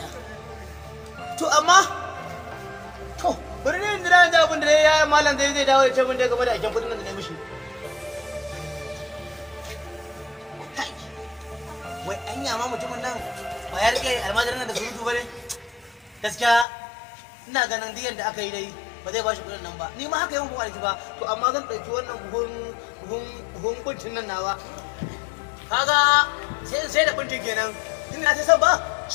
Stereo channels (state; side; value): drops out; right; at 16.7 s